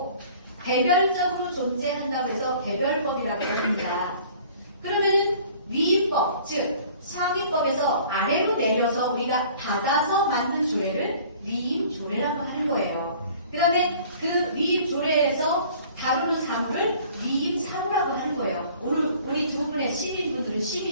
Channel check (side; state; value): both; inverted; correlation -0.51